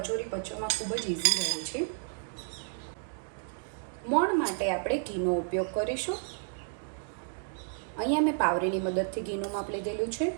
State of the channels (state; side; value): silent; left; digital silence